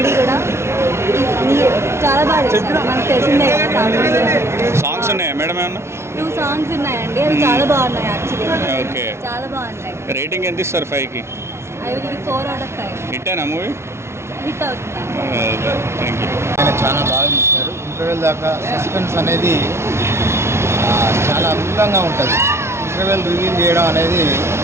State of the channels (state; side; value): late; left; 0.13 ms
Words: కూడా చాలా బాగా చేశారు. మనకు తెలిసిందే కదా. సాంగ్స్ ఉన్నాయా మేడం? ఏమన్నా 2 సాంగ్స్ ఉన్నాయండి. అవి చాలా బాగున్నాయి యాక్చువల్లీ. ఓకే. చాలా బాగున్నాయి. రేటింగ్ ఎంత ఇస్తారు 5కి? I will give 4 out of 5. హిట్టేనా మూవీ? హిట్ అవుతుంది. Thank you. చాలా బాగా తీశారు. ఇంటర్వెల్ దాకా సస్పెన్స్ అనేది చాలా అద్భుతంగా ఉంటుంది. ఇంటర్వెల్ రివీల్ చేయడం అనేది